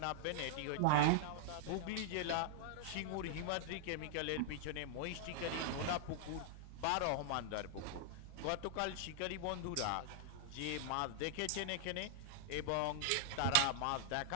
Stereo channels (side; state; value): both; different; correlation -0.01